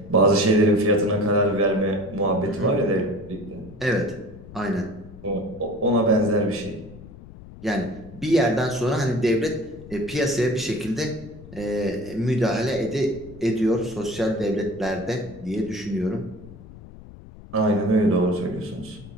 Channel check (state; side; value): noise; left; rumble, 18 dB below the sound